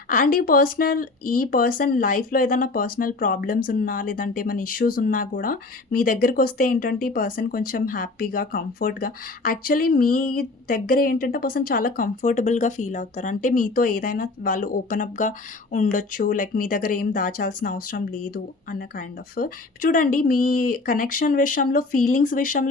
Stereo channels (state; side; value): quieter; right; 3.4 dB